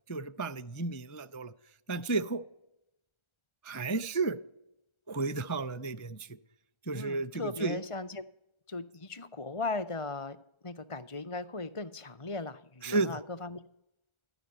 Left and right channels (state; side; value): late; right; 1.4 ms